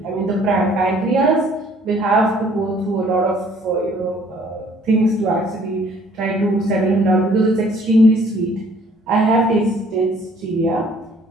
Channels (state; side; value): normal; both; correlation 0.58